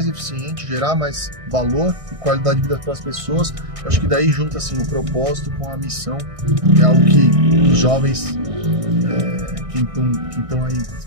eficiente, gerar mais valor e qualidade de vida para as pessoas. Eu acho que daí junta assim, o propósito com a missão, é algo que os jovens que estão aí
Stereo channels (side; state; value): left; late; 1.6 ms